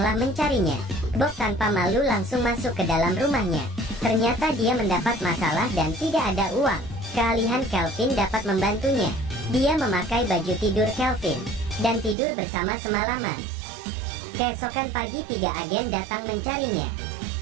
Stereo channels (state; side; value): drops out; left; at 12.2 s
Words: mencarinya. Bob tanpa malu langsung masuk ke dalam rumahnya. Ternyata dia mendapat masalah dan tidak ada uang. Kealihan Kelvin dapat membantunya. Dia memakai baju tidur Kelvin dan tidur bersama semalaman. Keesokan pagi 3 agen datang mencarinya.